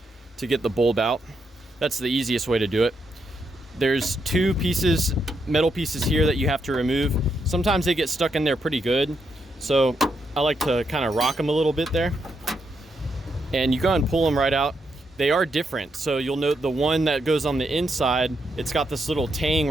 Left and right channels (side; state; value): both; normal; correlation 0.80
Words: to get the bulb out. That's the easiest way to do it. There's two pieces, metal pieces here that you have to remove. Sometimes they get stuck in there pretty good. So I like to kind of rock them a little bit there. And you go and pull them right out. They are different. So you'll note the one that goes on the inside, it's got this little tang